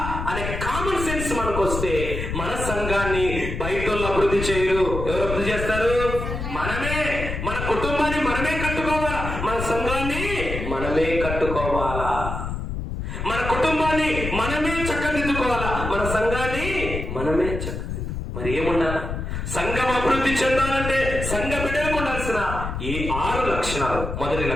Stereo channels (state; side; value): noise; left; rumble, 5 dB below the sound